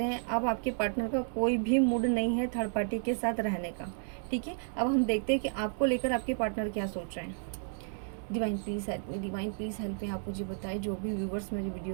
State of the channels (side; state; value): left; silent; 56 dB below the other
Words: हैं। अब आपके पार्टनर का कोई भी मूड नहीं है थर्ड पार्टी के साथ रहने का। ठीक है, अब हम देखते हैं कि आपको लेकर आपके पार्टनर क्या सोच रहे हैं। Divine please help me, divine please help me. आप मुझे बताएं, जो भी व्यूवर्स मेरे